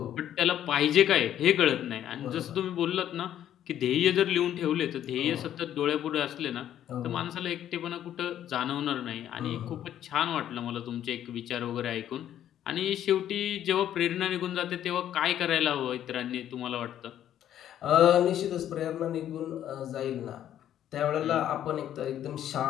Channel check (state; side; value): quieter; right; 11.0 dB